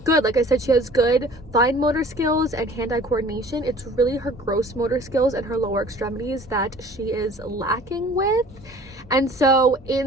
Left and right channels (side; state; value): both; normal; correlation 0.49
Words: good. Like I said, she has good fine motor skills and hand-eye coordination. It's really her gross motor skills and her lower extremities that she is lacking with. And so